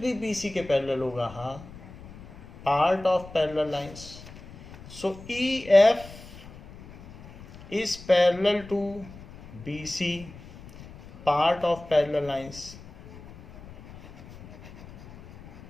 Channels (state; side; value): noise; left; rumble, 18 dB below the sound